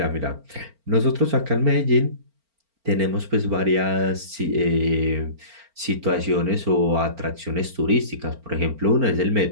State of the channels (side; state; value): left; late; 4.4 ms